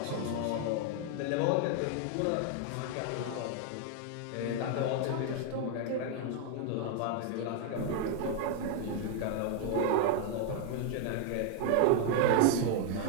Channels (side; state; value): both; different; correlation 0.00